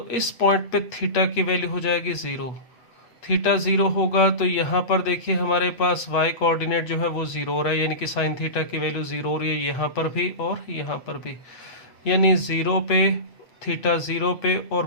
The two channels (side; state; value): right; late; 8.2 ms